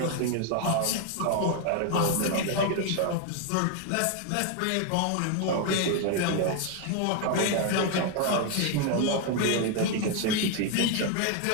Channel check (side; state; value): both; different; correlation 0.00